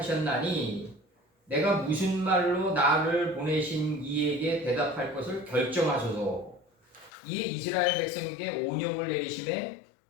내가 무슨 말로 나를 보내신 이에게 대답할 것을 결정하소서. 이에 이스라엘 백성에게 온역을 내리심에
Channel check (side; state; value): right; drops out; at 7.1 s